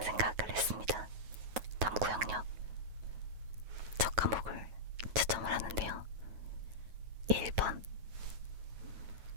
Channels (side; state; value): left; late; 9.4 ms